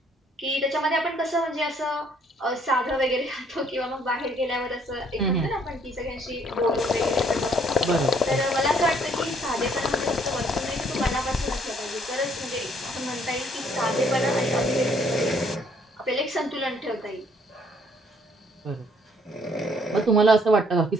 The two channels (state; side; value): normal; both; correlation 0.64